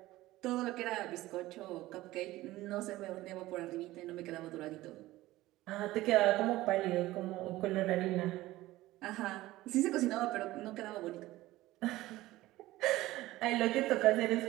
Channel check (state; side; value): quieter; left; 17.2 dB